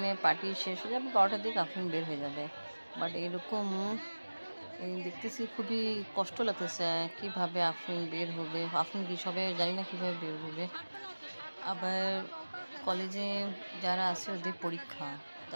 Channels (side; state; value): both; inverted; correlation -1.00